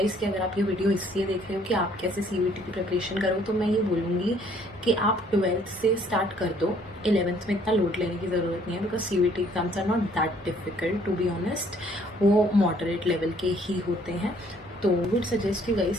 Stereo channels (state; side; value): normal; both; correlation 0.61